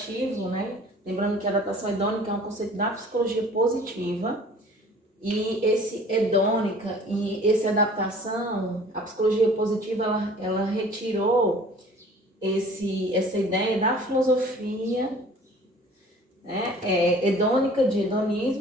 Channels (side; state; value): both; normal; correlation 0.49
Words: né? Lembrando que a adaptação hedônica é um conceito da psicologia positiva. E esse hedônica e essa adaptação, a psicologia positiva, ela retirou essa ideia da filosofia, né, hedônica, de